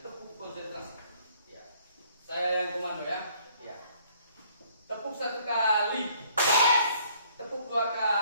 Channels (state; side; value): inverted; both; correlation -0.61